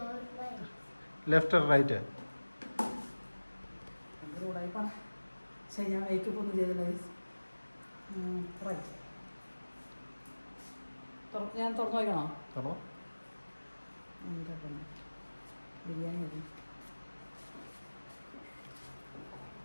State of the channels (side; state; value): both; inverted; correlation -1.00